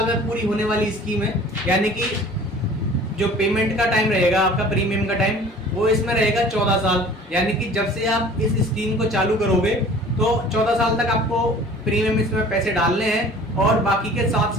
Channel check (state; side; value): normal; both; correlation 0.47